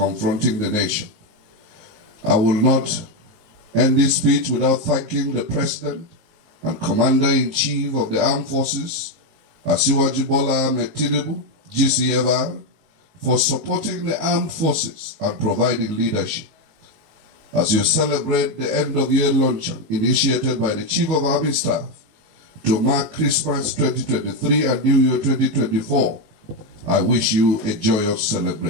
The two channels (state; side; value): late; left; 19 ms